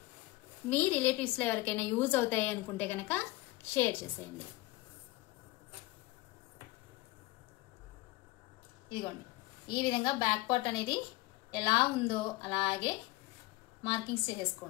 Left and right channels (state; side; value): quieter; right; 19.9 dB